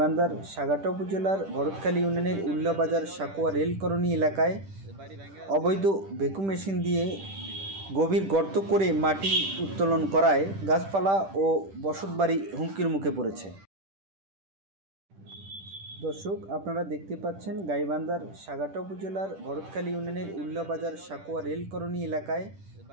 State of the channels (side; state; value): left; late; 10 ms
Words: সাগাটা উপজেলার ভরতখালী ইউনিয়নের উল্লাবাজার সাকুয়া রেলকরণী এলাকায় অবৈধ ভ্যাকুম মেশিন দিয়ে গভীর গর্ত করে মাটি উত্তোলন করায় গাছপালা ও বসতবাড়ি হুমকির মুখে পড়েছে। দর্শক, আপনারা দেখতে পাচ্ছেন গাইবান্ধার সাগাটা উপজেলার ভরতখালী ইউনিয়নের উল্লাবাজার সাকুয়া রেলকরণী এলাকায়